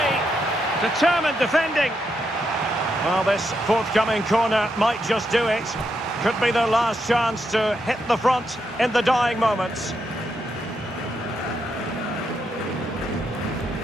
Determined defending. Well, this forthcoming corner might just do it. Could be their last chance to hit the front in the dying moments.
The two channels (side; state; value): both; normal; correlation 0.81